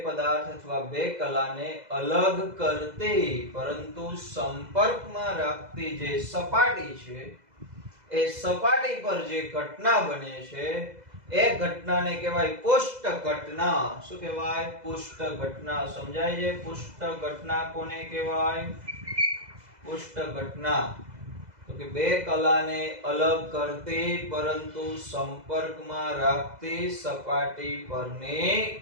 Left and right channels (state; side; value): late; left; 2.0 ms